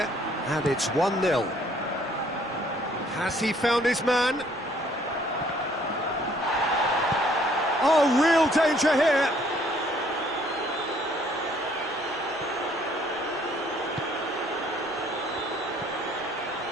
and it's 1-0. Has he found his man? Oh, real danger here.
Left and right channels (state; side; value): noise; right; rumble, 27 dB below the sound